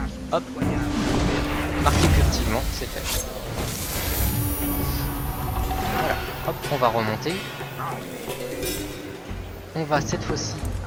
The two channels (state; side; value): identical; both; correlation 1.00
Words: hop, marquez furtivement, c'est fait. Voilà, hop, on va remonter. On va cette fois-ci